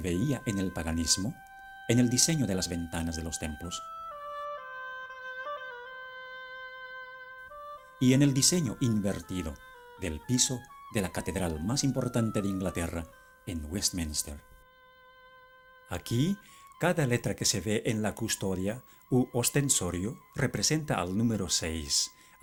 en el paganismo, en el diseño de las ventanas de los templos y en el diseño invertido del piso de la catedral más importante de Inglaterra, en Westminster. Aquí, cada letra que se ve en la custodia u ostensorio representa al número 6.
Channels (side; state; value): both; identical; correlation 1.00